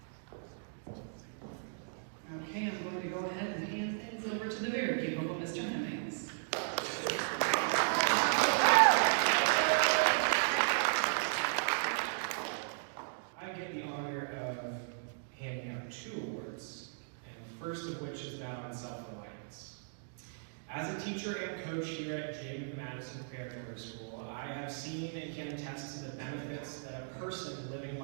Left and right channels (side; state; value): left; silent; digital silence